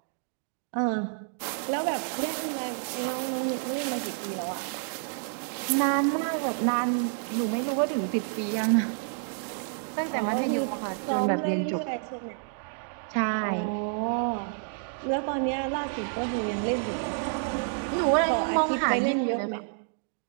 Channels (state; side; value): silent; left; 59 dB below the other